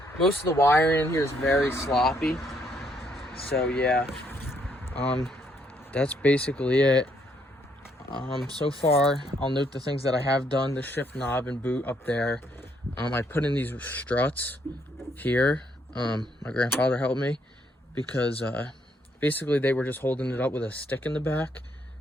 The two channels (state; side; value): normal; both; correlation 0.71